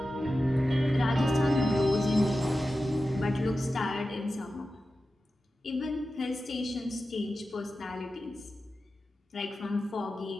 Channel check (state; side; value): normal; both; correlation 0.93